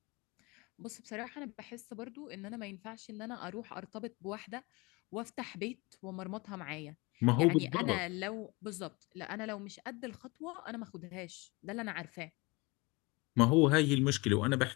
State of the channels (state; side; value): quieter; right; 25.5 dB